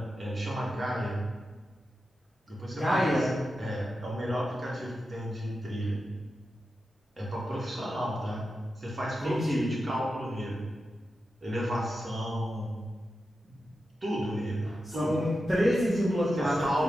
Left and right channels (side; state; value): both; normal; correlation 0.90